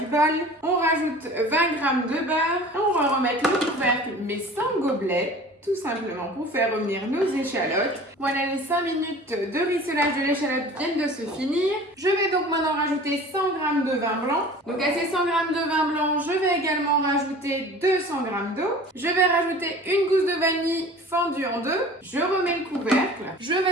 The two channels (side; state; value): both; normal; correlation 0.43